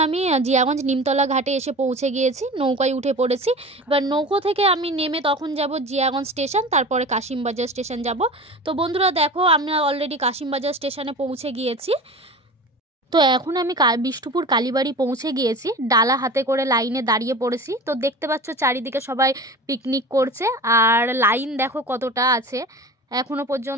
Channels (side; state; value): both; normal; correlation 0.35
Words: আমি জিয়াগঞ্জ নিমতলা ঘাটে এসে পৌঁছে গিয়েছি, নৌকায় উঠে পড়েছি। এবার নৌকো থেকে আমি নেমে তখন যাব জিয়াগঞ্জ স্টেশন, তারপরে কাশিমবাজার স্টেশন যাব। তো বন্ধুরা দেখো আমরা অলরেডি কাশিমবাজার স্টেশনে পৌঁছে গিয়েছি। তো এখন আমি বিষ্ণুপুর কালীবাড়ি পৌঁছে গিয়েছি, ডালা হাতে করে লাইনে দাঁড়িয়ে পড়েছি। তো দেখতে পাচ্ছ চারিদিকে সবাই পিকনিক করছে, আর লাইন দেখো কতটা আছে এখনো